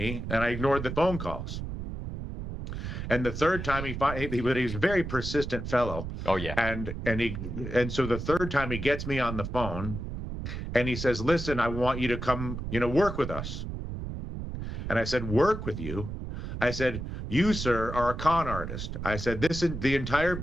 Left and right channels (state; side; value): noise; right; rumble, 6 dB below the sound